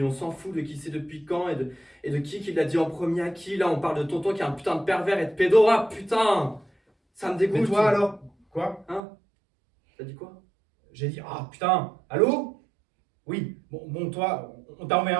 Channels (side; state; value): left; drops out; at 9.1 s